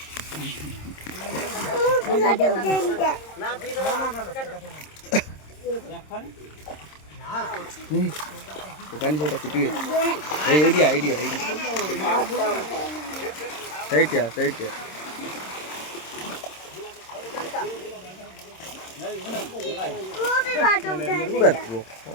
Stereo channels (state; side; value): late; right; 26 ms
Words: ଦୋକାନୀ ସେଇଟା ପିଟିବେ ଏଇଠିଆ ଏଇଠିଆ ଏଇଠି ସେଇଠିଆ ସେଇଠିଆ